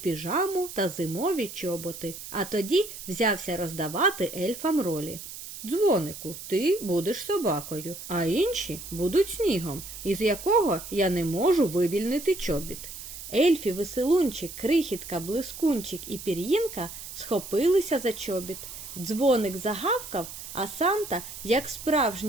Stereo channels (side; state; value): right; noise; hiss, 11 dB below the sound